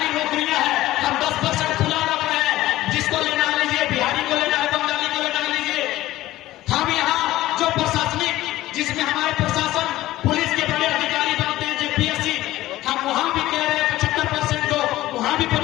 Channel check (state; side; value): quieter; right; 15.9 dB